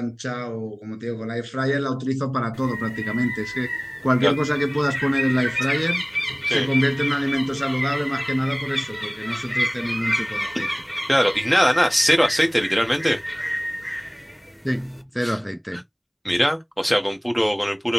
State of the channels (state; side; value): identical; both; correlation 1.00